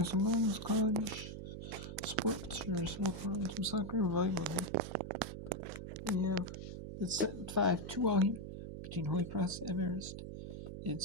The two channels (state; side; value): noise; right; hum, 8 dB below the sound